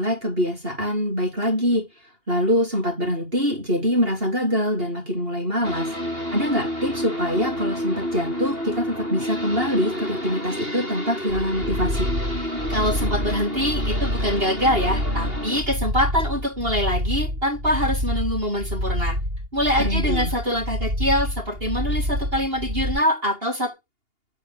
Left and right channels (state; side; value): late; left; 2.8 ms